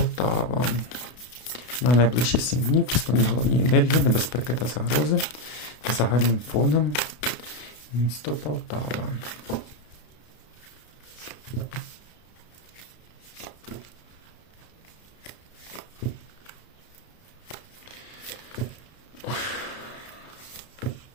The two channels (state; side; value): late; right; 32 ms